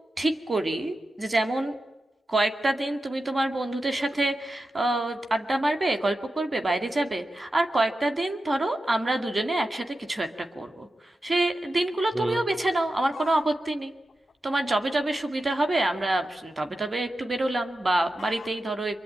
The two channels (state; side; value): normal; both; correlation 0.91